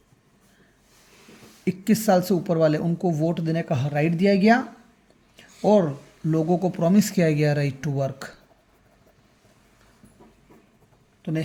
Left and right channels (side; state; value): both; identical; correlation 1.00